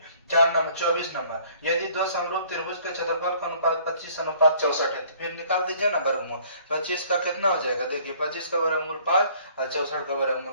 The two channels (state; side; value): inverted; both; correlation -0.57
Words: 24 नंबर, यदि दो समरूप त्रिभुज के क्षेत्रफल का अनुपात 25:64 है, तो फिर निकाल दीजिए ना वर्गमूल, 25 का कितना हो जाएगा, देखिए 25 का वर्गमूल 5 और 64 का वर्गमूल